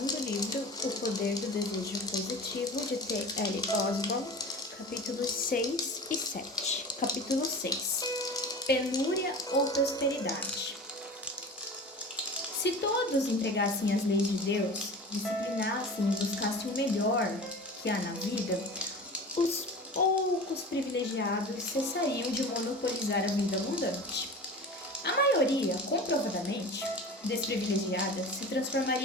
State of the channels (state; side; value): normal; both; correlation 0.35